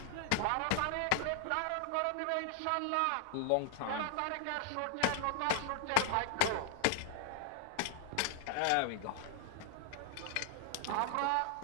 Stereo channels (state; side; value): different; both; correlation 0.00